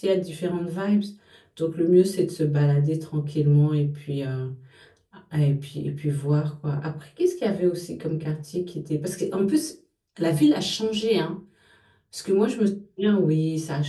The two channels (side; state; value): both; identical; correlation 1.00